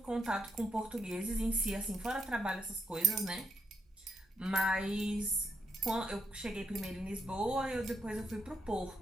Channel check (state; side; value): normal; both; correlation 0.78